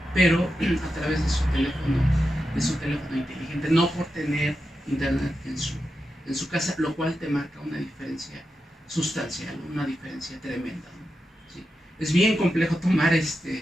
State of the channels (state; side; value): normal; both; correlation 0.89